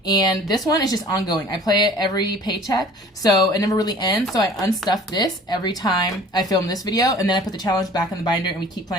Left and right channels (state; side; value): normal; both; correlation 0.48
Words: And this one is just ongoing. I play it every paycheck, so it never really ends. So I unstuff this every time I film this video, and then I put the challenge back in the binder and we keep